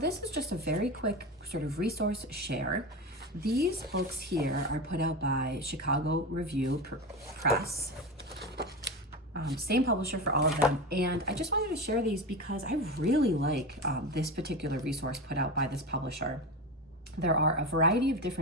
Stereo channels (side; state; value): both; normal; correlation 0.22